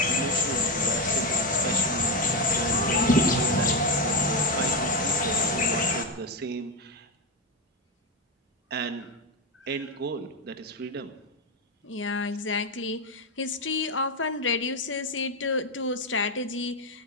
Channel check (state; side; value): normal; both; correlation 0.11